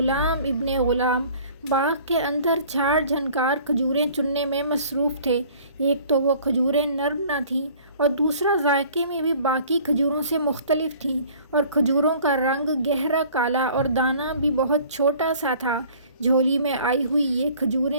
ابن غلام باغ کے اندر جھاڑ جھنکار کھجوریں چننے میں مصروف تھے۔ ایک تو وہ کھجوریں نرم نہ تھیں اور دوسرا ذائقے میں بھی باقی کھجوروں سے مختلف تھیں، اور کھجوروں کا رنگ گہرا کالا اور دانہ بھی بہت چھوٹا سا تھا۔ جھولی میں آئی ہوئی یہ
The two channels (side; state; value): both; inverted; correlation -0.51